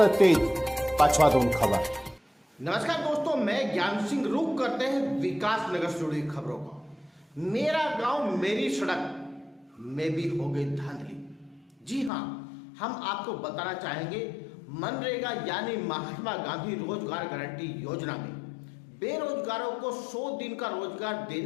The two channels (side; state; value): right; drops out; at 12.1 s